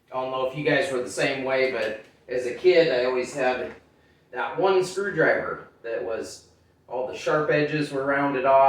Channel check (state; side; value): identical; both; correlation 1.00